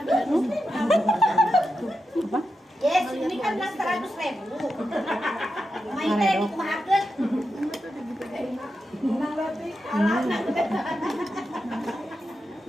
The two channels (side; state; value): both; normal; correlation 0.88